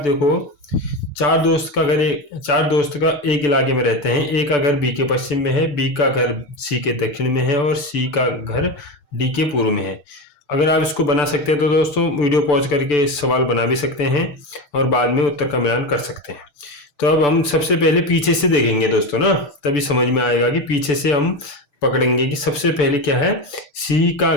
चार दोस्त का एक इलाके में रहते हैं, ए का घर बी के पश्चिम में है, बी का घर सी के दक्षिण में है, और सी का घर डी के पूर्व में है। अगर आप इसको बना सकते हैं तो दोस्तों वीडियो पॉज करके सवाल बना भी सकते हैं और बाद में उत्तर का मिलान कर सकते हैं। तो अब हम सबसे पहले पीछे से देखेंगे दोस्तों ना, तभी समझ में आएगा कि पीछे से हम पकड़ेंगे कि सबसे पहले क्या है, सी का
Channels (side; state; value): right; late; 6.9 ms